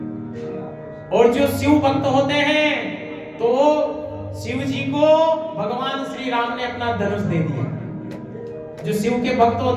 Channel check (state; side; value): identical; both; correlation 1.00